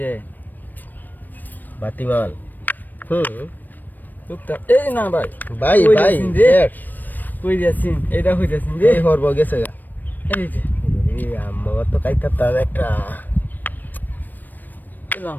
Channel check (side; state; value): right; late; 0.089 ms